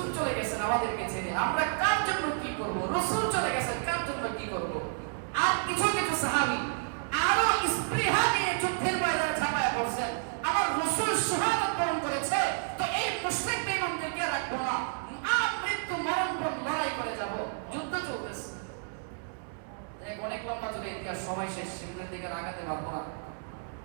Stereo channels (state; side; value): silent; left; 57 dB below the other